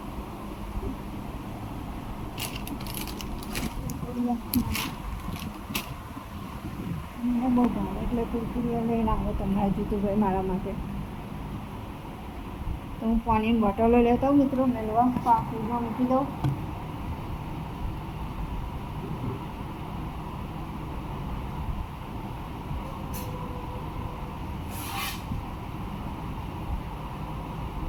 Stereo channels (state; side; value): identical; both; correlation 1.00